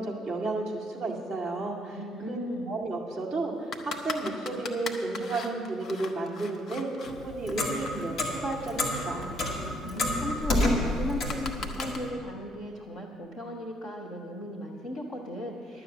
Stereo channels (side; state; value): both; normal; correlation 0.69